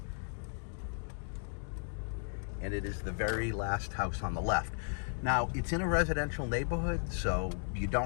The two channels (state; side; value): silent; right; 54 dB below the other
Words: And it is the very last house on the left. Now, it's in a residential neighborhood, so you